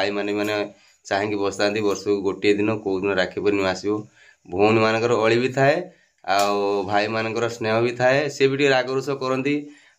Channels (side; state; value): both; identical; correlation 1.00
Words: मैंने चाहेंगे बसता वर्ष को गोटे दिन कौ दिन राखी पूर्णिमा आसो भौणी मानकर अली भी थाए भाई मानकर स्नेह भी थाए सी भी रागरुष करती